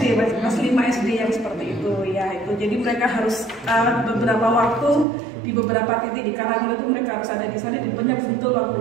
kelas 5 SD yang seperti itu ya itu. Jadi mereka harus beberapa waktu di beberapa titik di Karanglo itu mereka harus ada di sana, di banyak betul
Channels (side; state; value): left; drops out; at 5.1 s